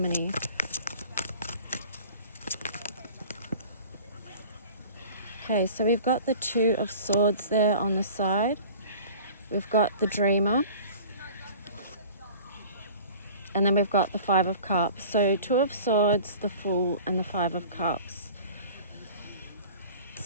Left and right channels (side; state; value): both; inverted; correlation -0.44